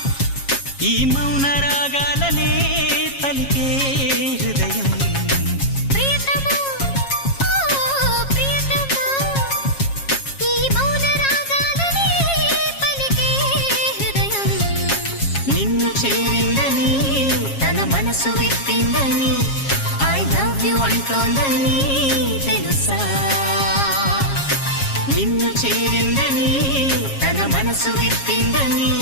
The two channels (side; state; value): right; late; 7.3 ms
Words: ఈ మౌన రాగాలనే పలికే హృదయం ప్రియతమా ఓ ప్రియతమా ఈ మౌన రాగాలనే పలికే హృదయం నిన్ను చేరిందని తన మనసు విప్పిందని ఐ లవ్ యు అంటోందని తెలుసా నిన్ను చేరిందని తన మనసు విప్పిందని